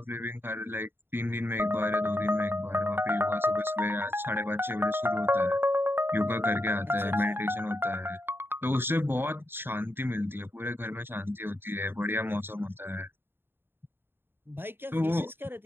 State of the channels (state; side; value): late; left; 0.10 ms